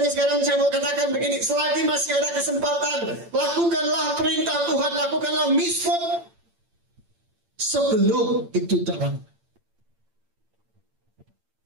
sekarang saya mau katakan begini, selagi masih ada kesempatan, lakukanlah perintah Tuhan, lakukanlah mitzvot sebelum itu terlambat.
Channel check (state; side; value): late; left; 8.8 ms